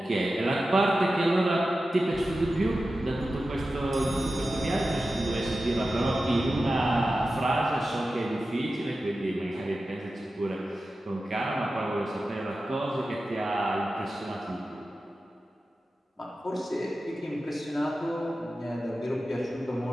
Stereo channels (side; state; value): both; normal; correlation 0.93